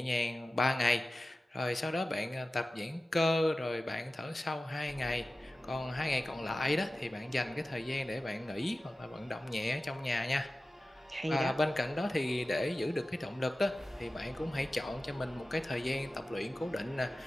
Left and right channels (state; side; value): normal; both; correlation 0.95